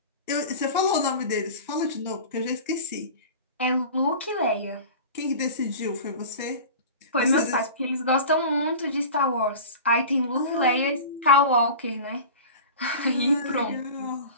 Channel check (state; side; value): inverted; both; correlation -0.35